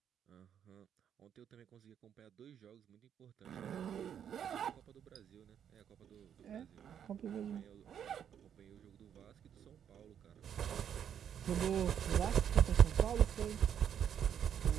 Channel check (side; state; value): left; quieter; 8.8 dB